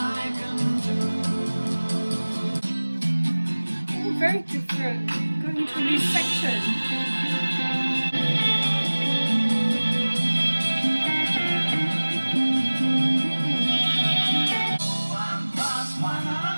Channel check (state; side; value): inverted; both; correlation -1.00